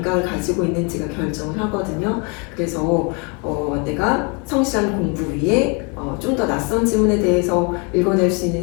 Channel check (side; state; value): right; quieter; 33.1 dB